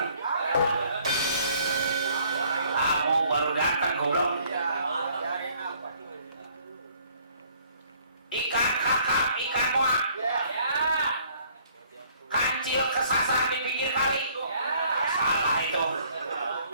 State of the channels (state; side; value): inverted; both; correlation -0.60